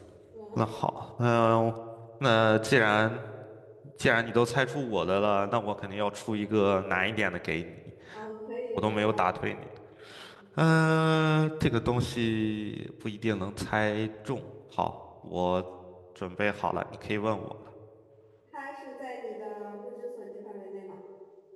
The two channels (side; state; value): both; identical; correlation 1.00